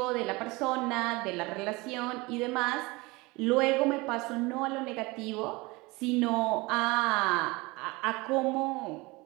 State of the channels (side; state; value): left; quieter; 23.6 dB